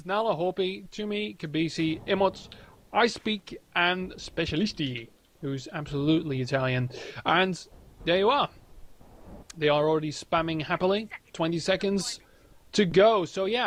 Nala, Hopi, Tumi, Kabisi, Emots, I Speak, and Specialisti, who's absolutely Italian. And there you are. They are already spamming happily. 20 seconds to go. So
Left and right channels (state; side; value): identical; both; correlation 1.00